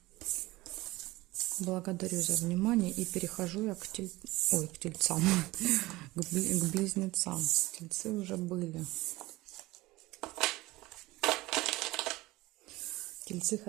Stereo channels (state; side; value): quieter; left; 19.6 dB